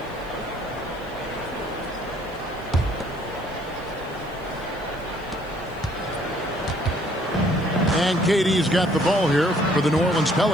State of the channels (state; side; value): noise; right; hiss, 28 dB below the sound